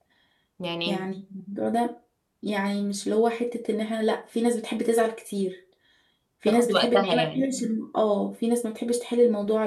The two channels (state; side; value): identical; both; correlation 1.00